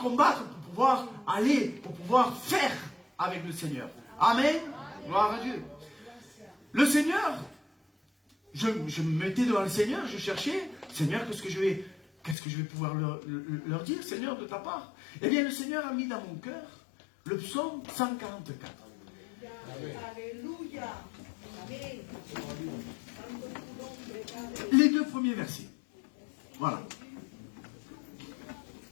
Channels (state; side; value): drops out; right; at 12.4 s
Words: pour pouvoir aller, pour pouvoir faire avec le Seigneur. Amen. Gloire à Dieu. Le Seigneur, je me mettais devant le Seigneur, je cherchais, Seigneur, qu'est-ce que je vais pouvoir leur dire, Seigneur, de ta part? Eh bien, le Seigneur a mis dans mon cœur le psaume 144. Alléluia. Amen. Les 2 premiers versets. Voilà.